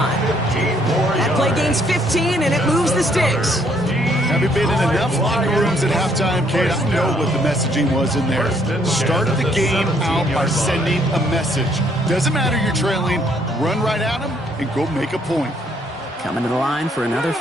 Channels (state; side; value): normal; both; correlation 0.67